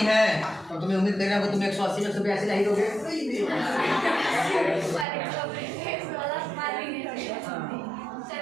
है तो तुम्हें उम्मीद कर रहा हूँ तुम 180 में 182 ला ही दोगे।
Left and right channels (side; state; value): left; drops out; at 5.1 s